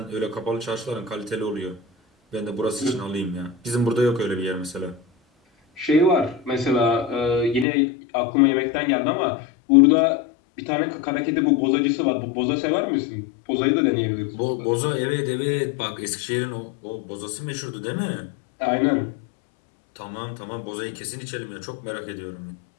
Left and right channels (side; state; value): right; drops out; at 7.7 s